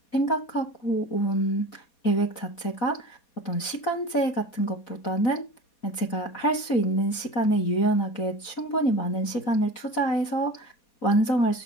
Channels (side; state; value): right; late; 4.2 ms